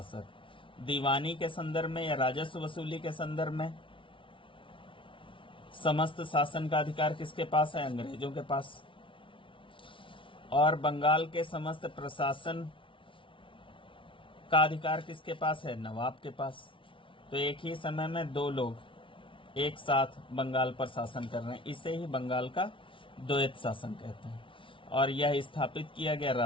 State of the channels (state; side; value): late; right; 0.25 ms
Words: दीवानी के संदर्भ में या राजस्व वसूली के संदर्भ में समस्त शासन का अधिकार किसके पास है? अंग्रेजों के पास। और बंगाल के समस्त प्रशासन का अधिकार किसके पास है? नवाब के पास। तो एक ही समय में दो लोग एक साथ बंगाल पर शासन कर रहे हैं, इसे ही बंगाल का द्वैत शासन कहते हैं। और यह स्थापित किया गया